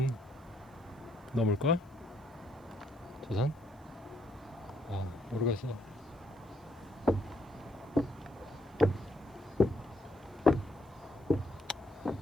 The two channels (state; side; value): normal; both; correlation 0.72